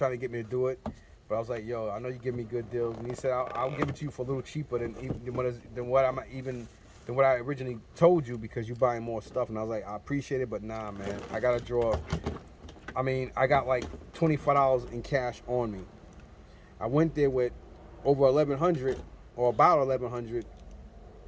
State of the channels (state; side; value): identical; both; correlation 1.00